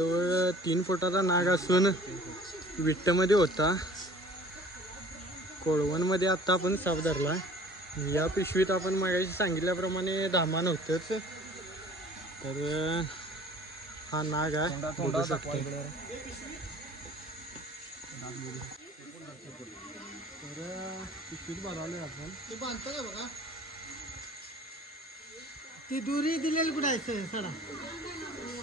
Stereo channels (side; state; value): both; normal; correlation 0.49